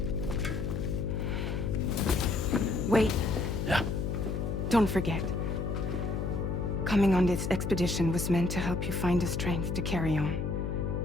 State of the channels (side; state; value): left; noise; hum, 1 dB below the sound